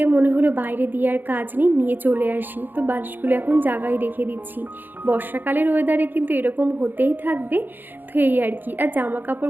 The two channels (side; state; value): left; late; 0.091 ms